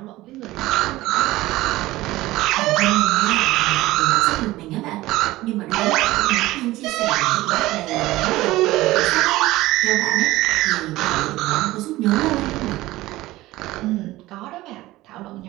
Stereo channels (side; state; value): left; quieter; 17.8 dB